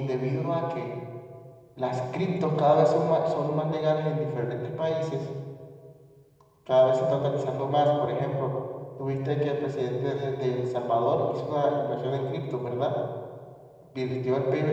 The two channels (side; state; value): both; identical; correlation 1.00